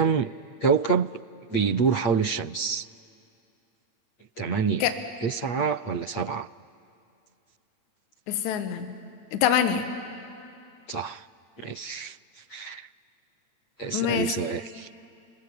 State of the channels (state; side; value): late; right; 8.6 ms